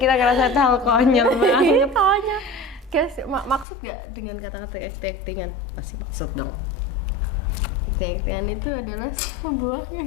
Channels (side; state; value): right; drops out; at 3.7 s